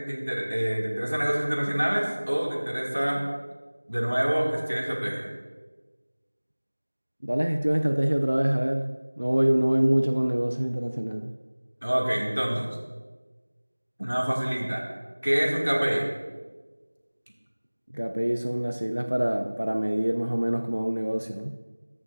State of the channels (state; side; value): inverted; both; correlation -1.00